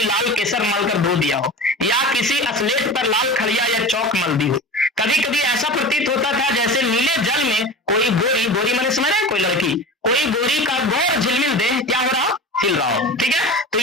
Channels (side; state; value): both; normal; correlation 0.32